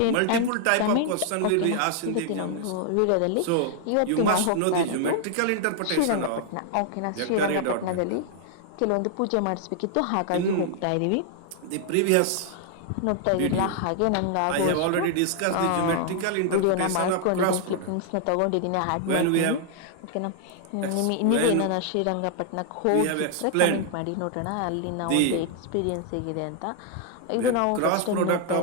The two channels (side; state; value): both; different; correlation 0.00